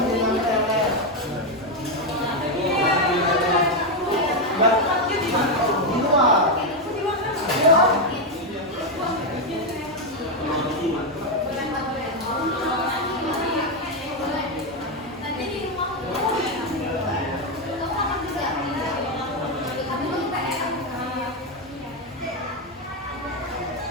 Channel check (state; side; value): normal; both; correlation 0.05